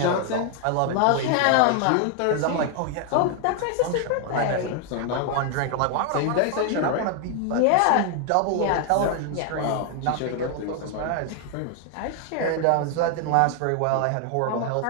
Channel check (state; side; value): different; both; correlation 0.00